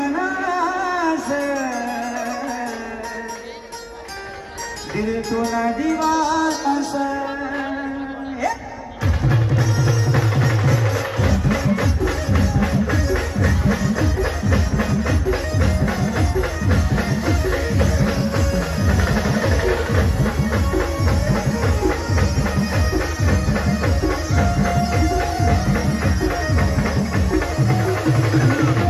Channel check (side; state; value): both; identical; correlation 1.00